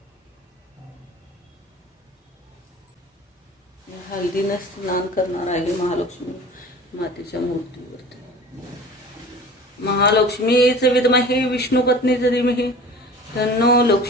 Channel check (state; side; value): normal; both; correlation 0.41